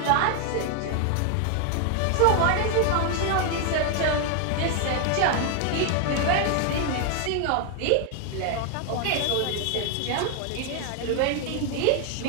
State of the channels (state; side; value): different; both; correlation 0.00